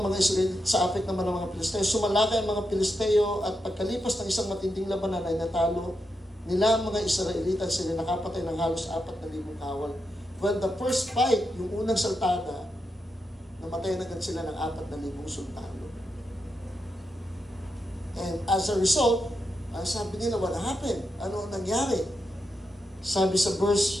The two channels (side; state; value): both; normal; correlation 0.86